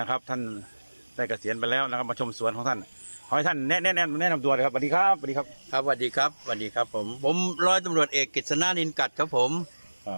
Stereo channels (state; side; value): inverted; both; correlation -1.00